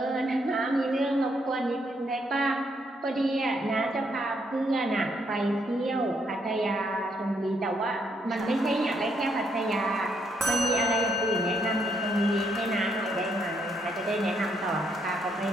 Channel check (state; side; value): normal; both; correlation 0.73